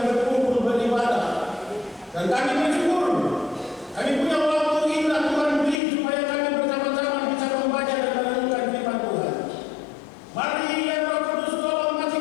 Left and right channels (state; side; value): drops out; right; at 5.8 s